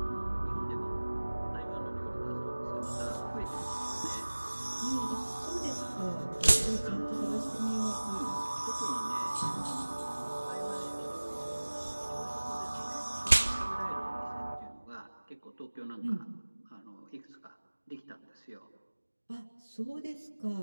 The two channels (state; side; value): inverted; both; correlation -1.00